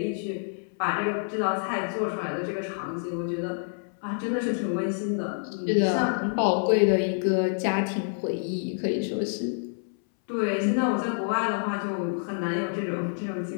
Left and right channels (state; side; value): silent; right; 60 dB below the other